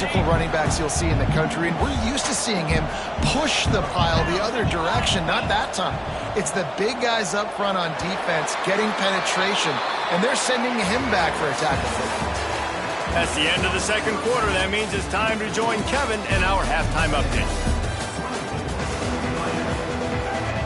running backs you'll see in the country, and we're used to seeing him push the pile the other direction. Not that time. It's the big guys up front on defense getting penetration, and they're sending him back for a tackle. That's the end of the 2nd quarter. That means it's time to join Kevin in our halftime update.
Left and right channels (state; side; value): identical; both; correlation 1.00